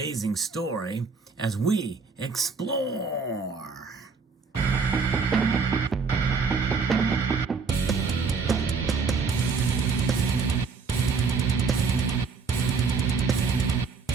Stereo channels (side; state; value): left; quieter; 5.0 dB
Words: story as we explore.